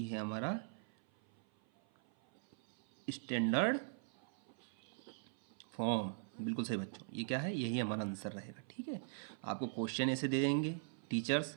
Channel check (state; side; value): silent; left; 50 dB below the other